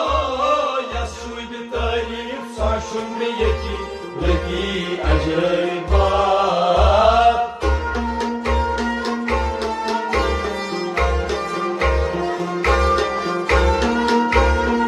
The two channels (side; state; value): both; identical; correlation 1.00